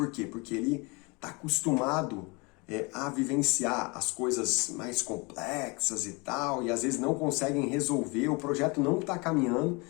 quê? Porque ele está acostumado a vivenciar as coisas mais complexas e tal, e às vezes não conseguem resolver, o projeto não está caminhando,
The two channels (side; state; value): right; quieter; 28.4 dB